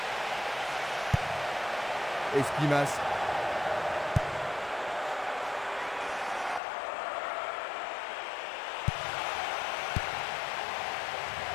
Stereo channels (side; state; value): right; drops out; at 6.6 s